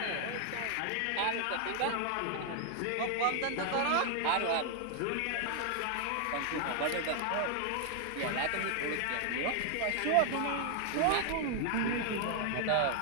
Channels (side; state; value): both; different; correlation 0.00